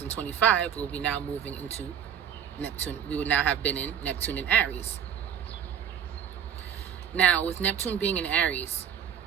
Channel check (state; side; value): quieter; left; 8.7 dB